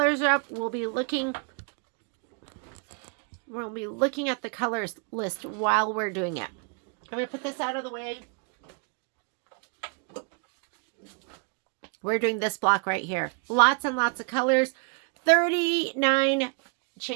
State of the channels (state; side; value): quieter; left; 36.7 dB